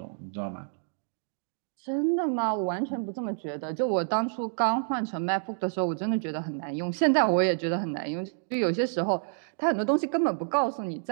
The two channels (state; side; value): silent; left; digital silence